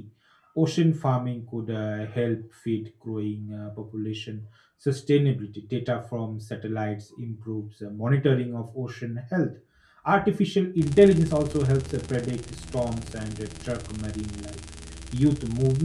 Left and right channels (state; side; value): identical; both; correlation 1.00